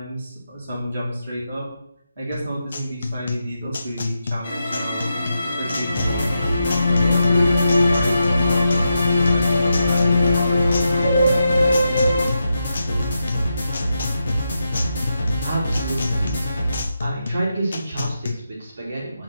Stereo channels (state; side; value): inverted; both; correlation -0.86